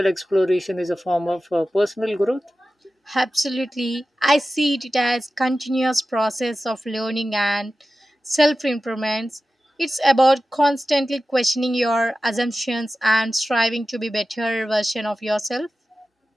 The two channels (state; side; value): normal; both; correlation 0.94